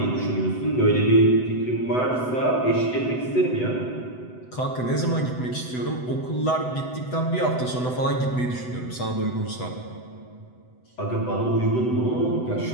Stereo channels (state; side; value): late; right; 8.0 ms